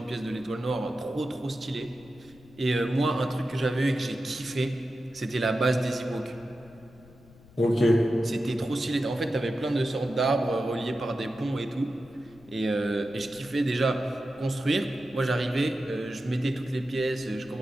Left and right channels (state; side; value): noise; left; rumble, 24 dB below the sound